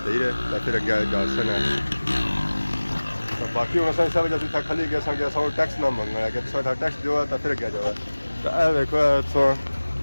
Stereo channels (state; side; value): inverted; both; correlation -1.00